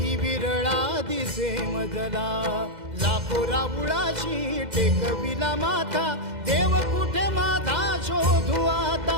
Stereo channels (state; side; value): late; left; 2.0 ms